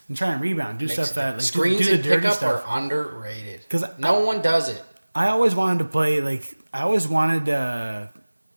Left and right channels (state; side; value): inverted; both; correlation -1.00